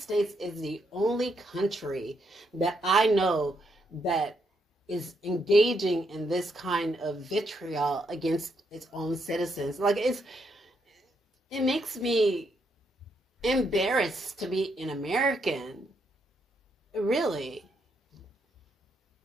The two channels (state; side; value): normal; both; correlation 0.77